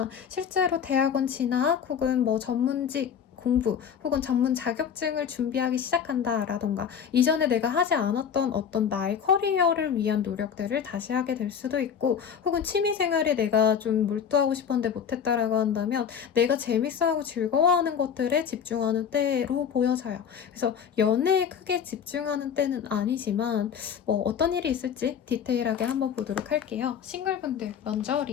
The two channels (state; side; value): quieter; right; 7.8 dB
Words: 실제로 대학원 진학 혹은 뭐 전문직 공부 혹은 전문 자격증을 준비하기 시작한다라던가 이전에 내가 하지 않았던 어떤 나의 커리어를 위한 노력들을 다시 하게 될 수도 있고 혹은 취미생활에 내가 좀 몰두하고 싶었는데 못했다라고 한다면 내가 재밌어하고 즐거워하는 것들에 집중하는 때로 보여져요. 그래서 연애에 크게 집중하는 때는 아니지만 뭐 어떤 일이 있을지 디테일하게 한번 보도록 할게요. 싱글분들 먼저